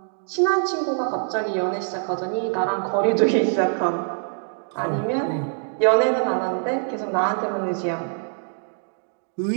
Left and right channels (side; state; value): left; silent; 63 dB below the other